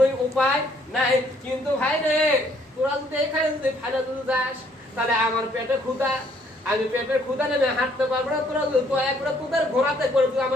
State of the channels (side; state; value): both; normal; correlation 0.65